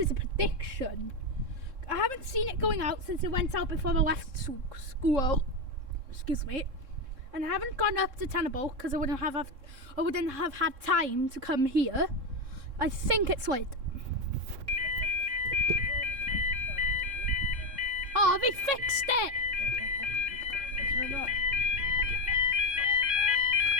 a prediction. I haven't seen it going out since it went out before I left school. Excuse me. And I haven't gone up to Tenable because I wouldn't have had time to come here. I think it's late. Oh, they fixed it!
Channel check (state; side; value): late; left; 3.7 ms